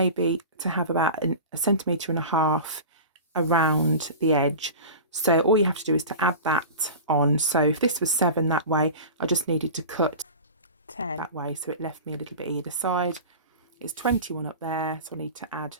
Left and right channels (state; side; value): inverted; both; correlation -0.33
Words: to have about 1.5 centimetres around the edge. So all you have to do is to add that on. So if this was 7 that way, I just needed to cut 10 that way, so it left me a little bit either side. It's 21 up there, so I need to add